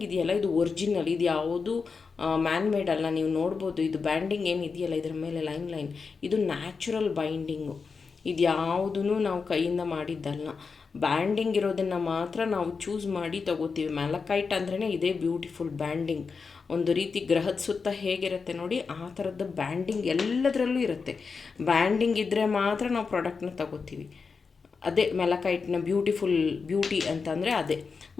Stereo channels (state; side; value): quieter; right; 5.0 dB